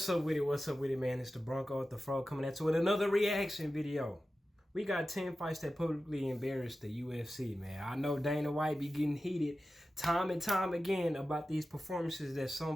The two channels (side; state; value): both; normal; correlation 0.94